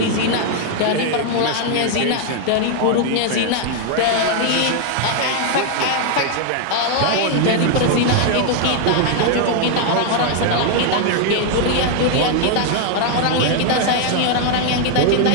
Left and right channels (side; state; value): both; different; correlation 0.00